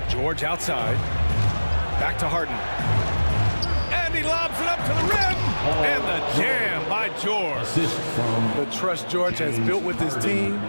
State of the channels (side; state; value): both; inverted; correlation -1.00